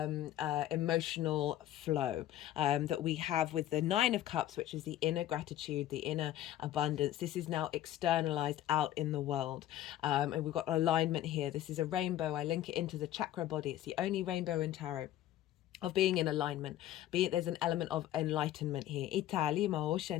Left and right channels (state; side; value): quieter; right; 13.1 dB